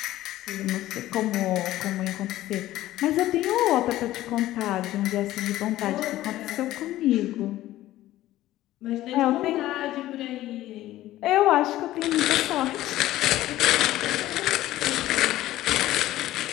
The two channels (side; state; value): right; quieter; 15.1 dB